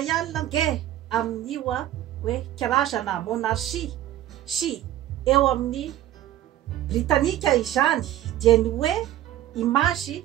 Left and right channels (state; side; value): quieter; left; 13.1 dB